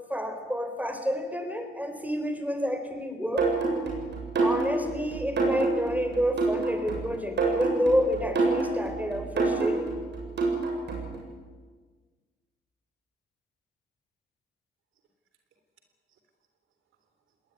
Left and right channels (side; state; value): both; normal; correlation 0.74